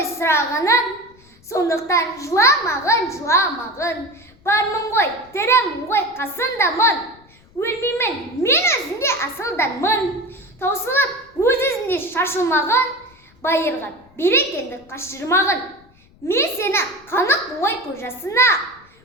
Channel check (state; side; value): noise; left; rumble, 29 dB below the sound